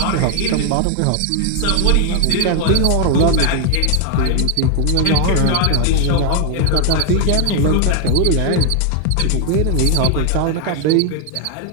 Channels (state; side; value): different; both; correlation 0.01